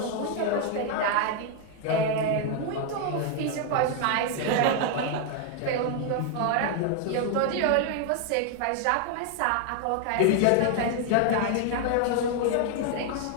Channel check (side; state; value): both; different; correlation 0.00